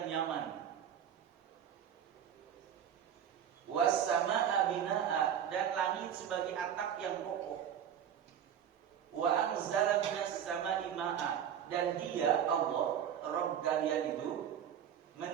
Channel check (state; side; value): quieter; left; 9.1 dB